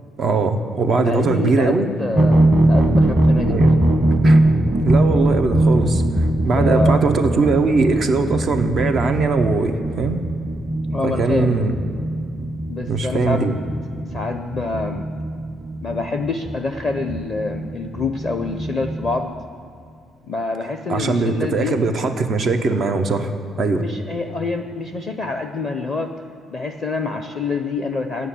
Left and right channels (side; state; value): both; normal; correlation 0.81